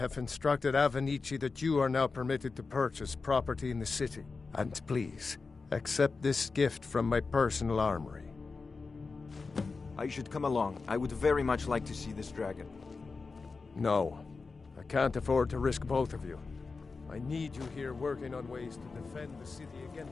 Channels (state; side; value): quieter; right; 4.3 dB